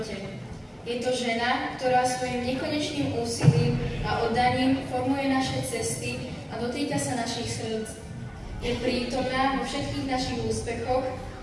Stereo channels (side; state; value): both; identical; correlation 1.00